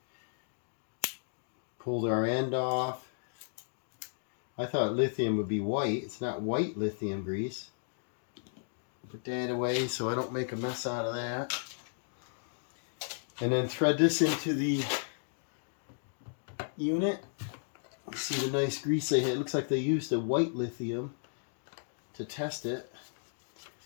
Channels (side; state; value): right; silent; digital silence